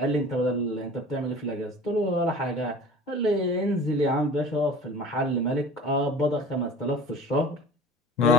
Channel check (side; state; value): both; normal; correlation 0.41